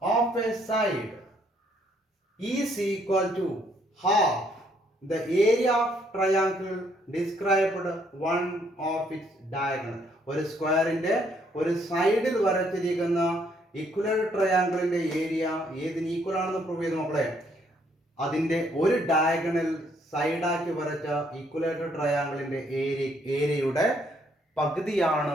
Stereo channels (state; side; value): normal; both; correlation 0.69